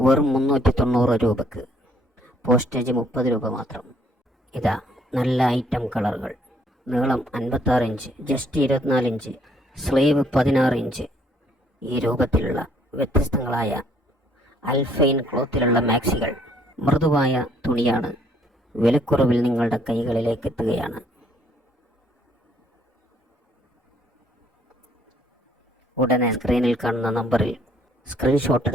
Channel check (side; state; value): both; normal; correlation 0.65